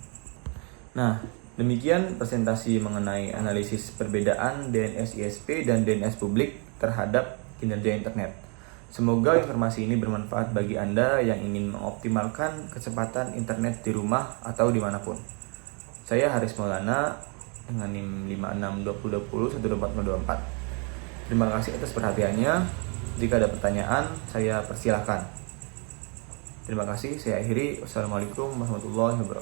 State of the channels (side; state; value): left; quieter; 35.2 dB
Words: Nah, demikian presentasi mengenai analisis perbedaan DNS ISP dan DNS publik terhadap kinerja internet. Semoga informasi ini bermanfaat bagi Anda yang ingin mengoptimalkan kecepatan internet di rumah atau dimanapun. Saya Haris Maulana dengan NIM 562020124024. Terima kasih atas perhatiannya. Jika ada pertanyaan, saya persilahkan. Terima kasih, saya akhiri. Wassalamualaikum warahmatullahi